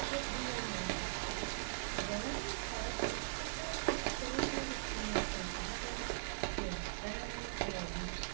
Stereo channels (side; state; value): left; silent; digital silence